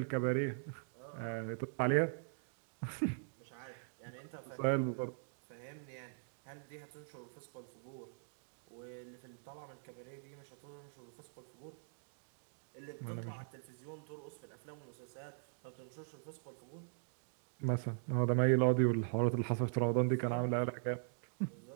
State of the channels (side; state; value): left; silent; digital silence